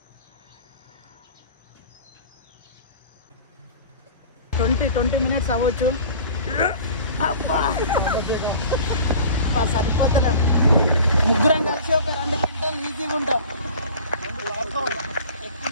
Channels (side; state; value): both; inverted; correlation -0.42